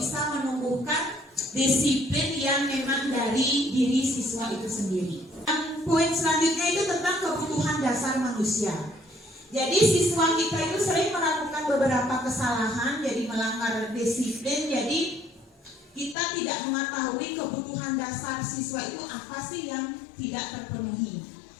menumbuhkan disiplin yang memang dari diri siswa itu sendiri. Poin selanjutnya itu tentang kebutuhan dasar manusia. Jadi siswa kita itu sering melakukan beberapa kesalahan, jadi melanggar disiplin. Jadi kita tidak mengetahui kebutuhan dasar siswa itu apa sih yang tidak terpenuhi.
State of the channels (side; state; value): right; drops out; at 16.2 s